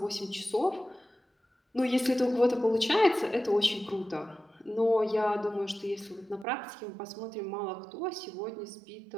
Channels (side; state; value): left; drops out; at 6.5 s